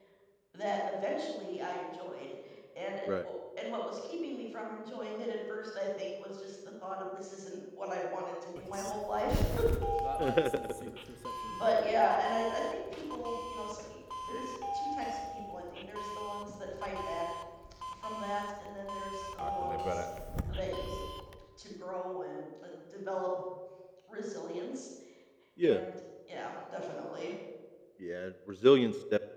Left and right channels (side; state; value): both; identical; correlation 1.00